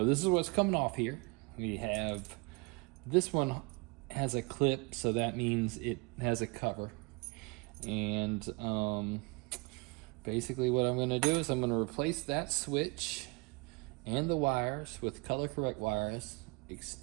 this is what's coming off here. We have, this one has a clip, so that means it has a cover. And basically what I'm gonna do is I'm gonna replace that switch and the wires with color correct wires,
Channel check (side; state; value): left; quieter; 28.4 dB